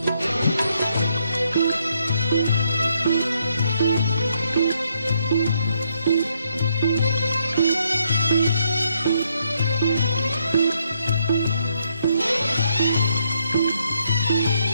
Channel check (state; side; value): inverted; both; correlation -0.74